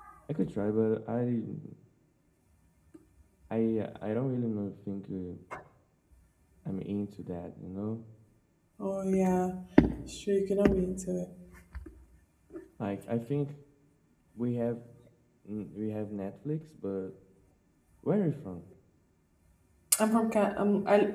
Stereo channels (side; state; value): both; identical; correlation 1.00